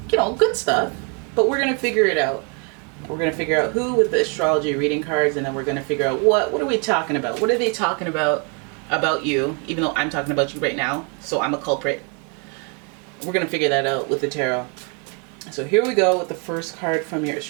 good stuff. But we're going to figure it out. We're going to figure out who with the astrology reading cards, and then we're going to figure out what are we talking about? What are they talking about you, even though I'm talking about you right now, so I'm a culprit. We're going to figure that out with the tarot. So here we go with the first card from your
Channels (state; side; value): quieter; left; 36.7 dB